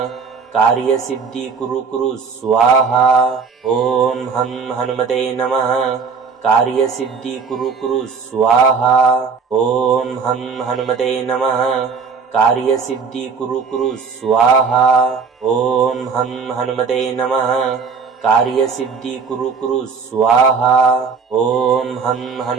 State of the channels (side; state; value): left; quieter; 5.4 dB